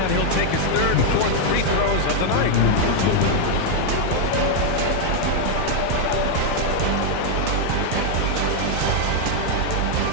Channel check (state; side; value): different; both; correlation 0.00